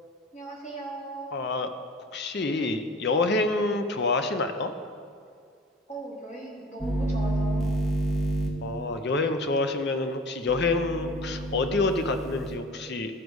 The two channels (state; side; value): normal; both; correlation 0.40